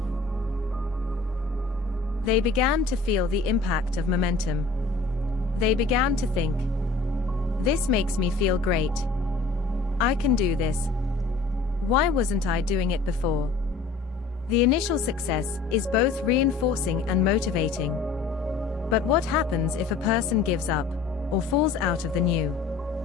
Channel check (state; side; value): quieter; right; 4.0 dB